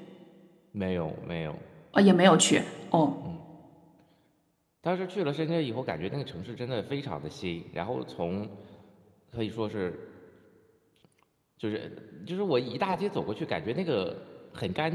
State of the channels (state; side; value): identical; both; correlation 1.00